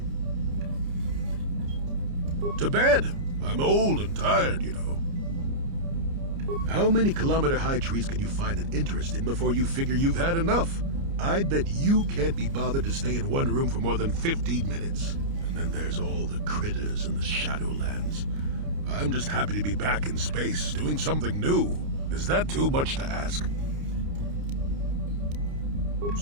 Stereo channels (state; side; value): late; left; 29 ms